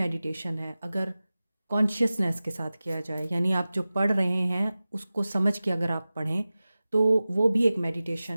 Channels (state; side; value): inverted; both; correlation -0.96